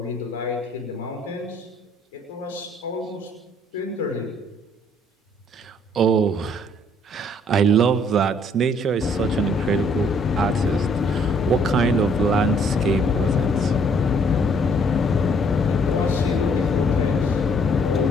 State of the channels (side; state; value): both; normal; correlation 0.63